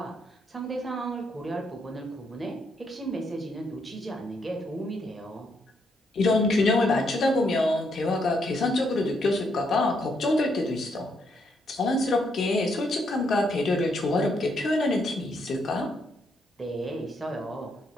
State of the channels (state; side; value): normal; both; correlation 0.76